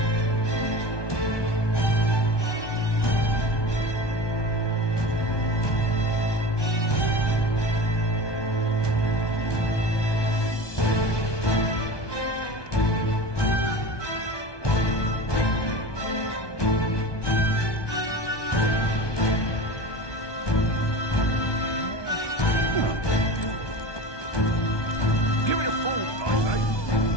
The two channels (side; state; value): right; late; 1.2 ms